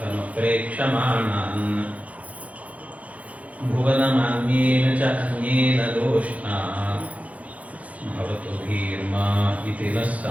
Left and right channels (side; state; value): left; late; 0.068 ms